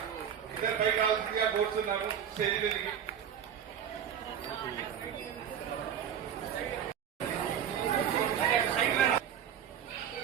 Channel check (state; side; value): quieter; left; 8.8 dB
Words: ఇద్దరు పై కావాల్సిందిగా కోరుతున్నాము స్టేజ్ మీదకి.